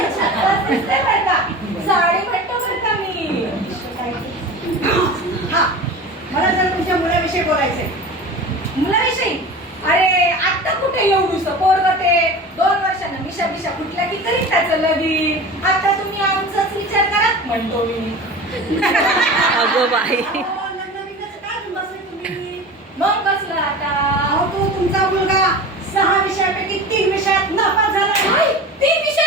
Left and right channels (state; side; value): normal; both; correlation 0.34